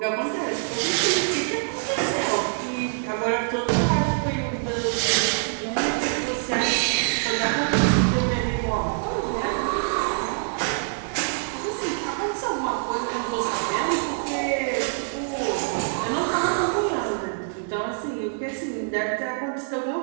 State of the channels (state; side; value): silent; left; 62 dB below the other